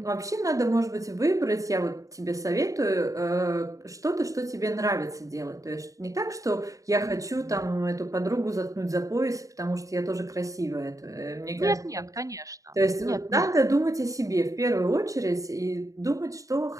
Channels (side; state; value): left; late; 0.16 ms